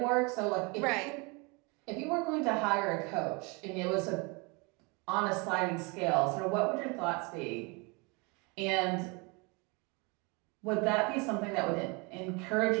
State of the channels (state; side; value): quieter; left; 29.2 dB